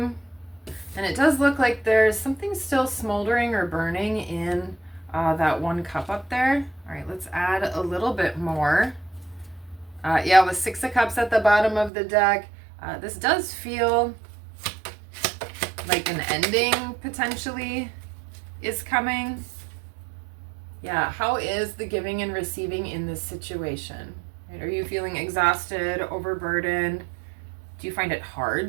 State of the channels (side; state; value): left; drops out; at 11.9 s